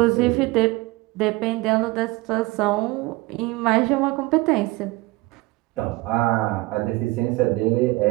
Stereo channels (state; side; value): quieter; left; 21.7 dB